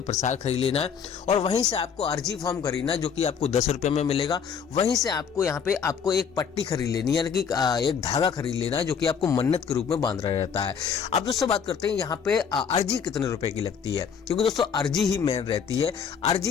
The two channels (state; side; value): quieter; right; 6.9 dB